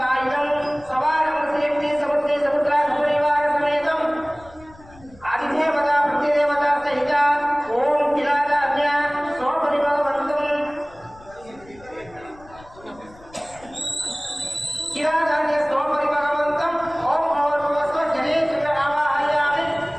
ಸವಾರಂ ಶ್ರೀಮತಿ ಸಮುದ್ರೇ ಸಮುದ್ರಾಧಿಪರಿವಾರ ಸಮೇತಂ ಆದಿದೇವತಾ ಪ್ರತಿದೇವತಾ ಸಹಿತ ಓಂ ಕಿಲಾದಾಜ್ಞ ಸ್ವಪರಿಭವಂತಂ ಕಿಲಾದಾಜ್ಞ ಸ್ವಪರಿಭವಂತಂ ಓಂ ಭವರ್ಭವಸ್ವ ಗಣೇಶನ ಆವಾಹಯಾಮಿ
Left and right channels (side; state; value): left; noise; rumble, 24 dB below the sound